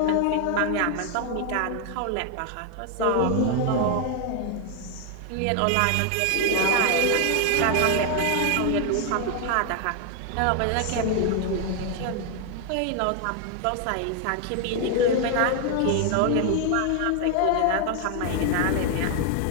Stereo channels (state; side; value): different; both; correlation 0.00